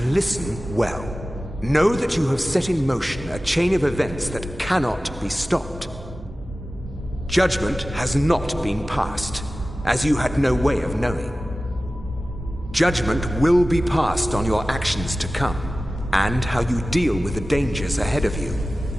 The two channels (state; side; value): normal; both; correlation 0.96